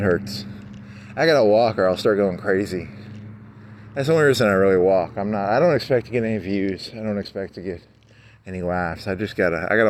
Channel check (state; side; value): identical; both; correlation 1.00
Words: hurts. I gotta walk or I'll start going crazy. That's the only reason I really walk. I don't expect to get any views. I don't expect to get any laughs. I